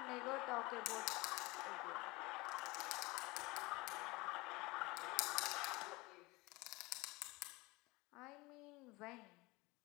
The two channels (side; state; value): right; quieter; 23.1 dB